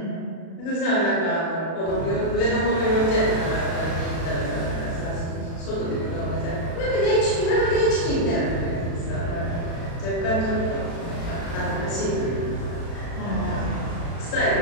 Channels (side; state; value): right; late; 36 ms